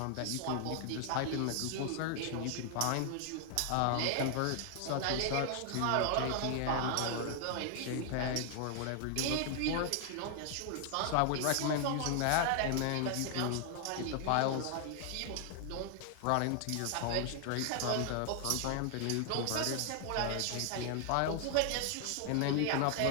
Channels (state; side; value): different; both; correlation 0.00